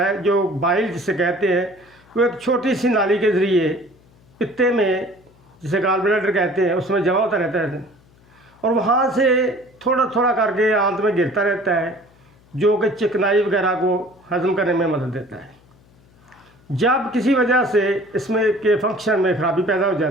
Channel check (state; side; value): noise; left; hum, 29 dB below the sound